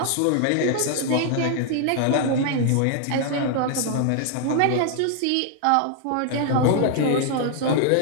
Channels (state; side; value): different; both; correlation 0.00